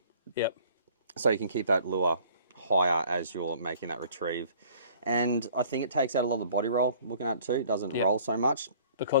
Yep. So you can keep that lure higher as you're making that retrieve. And I think it takes out a lot of the body roll, looking at it too. It doesn't roll so much.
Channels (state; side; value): inverted; both; correlation -0.54